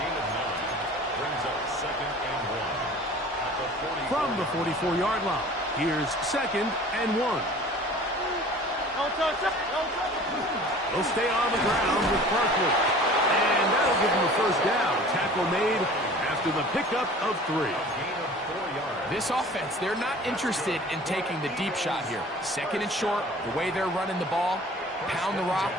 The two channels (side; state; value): both; normal; correlation 0.45